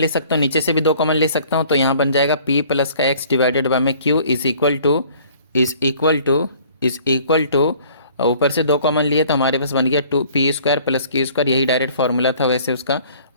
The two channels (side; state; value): both; inverted; correlation -0.54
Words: सकता हूँ, नीचे से भी 2 कॉमन ले सकता हूँ, तो यहाँ बन जाएगा p प्लस का x डिवाइडेड बाय में q इज इक्वल टू ऊपर से 2 कॉमन लिए तो हमारे पास बन गया 2p square plus q square, यही डायरेक्ट फार्मूला था वैसे उसका,